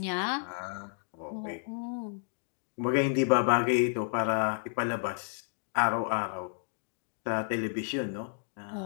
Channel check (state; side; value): silent; right; digital silence